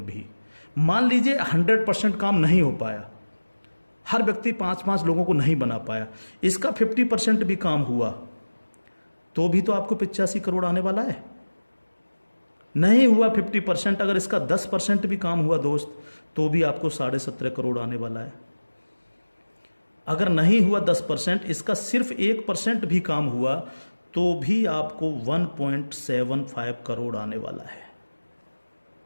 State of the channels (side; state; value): both; inverted; correlation -1.00